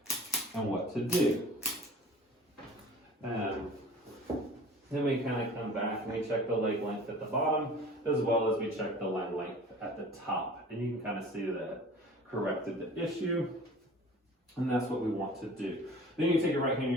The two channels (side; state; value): both; normal; correlation 0.44